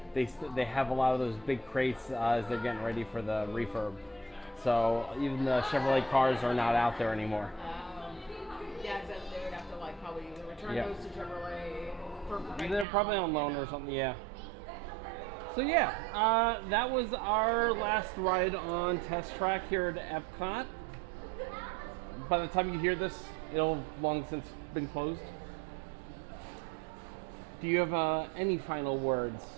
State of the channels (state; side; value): drops out; left; at 12.9 s